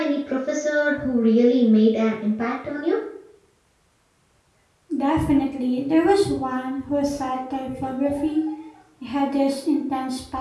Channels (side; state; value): both; identical; correlation 1.00